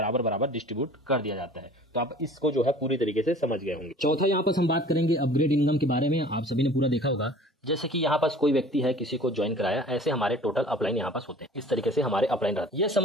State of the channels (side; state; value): both; normal; correlation 0.47